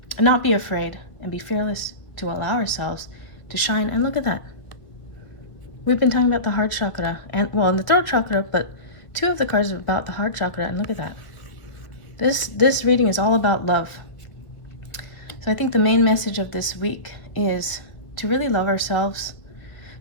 not be afraid and be fearless to allow ourselves to shine. And look at that. We've been talking about the heart chakra and the throat chakra, but 2 of the cards are about the heart chakra, and look at that. This reading is all about love. So I think the main message of this week is to really love ourselves,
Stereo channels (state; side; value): late; right; 1.7 ms